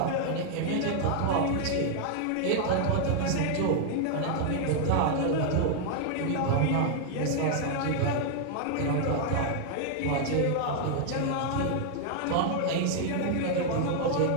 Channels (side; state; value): both; different; correlation 0.00